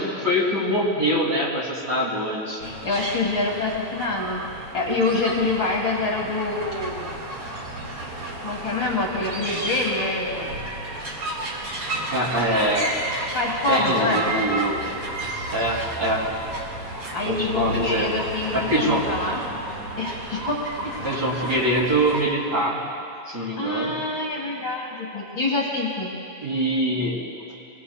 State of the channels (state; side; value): normal; both; correlation -0.05